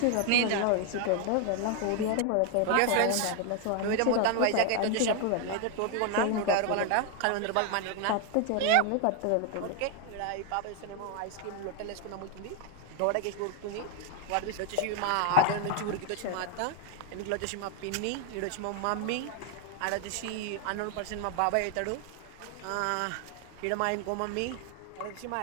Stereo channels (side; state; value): both; different; correlation 0.00